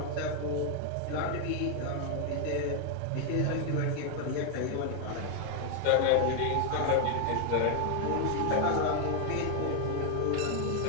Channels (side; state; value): both; different; correlation 0.00